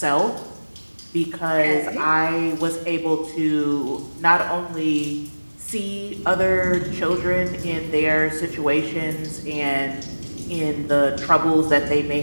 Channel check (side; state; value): both; inverted; correlation -1.00